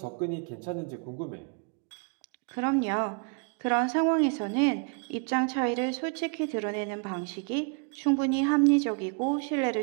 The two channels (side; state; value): left; quieter; 38.2 dB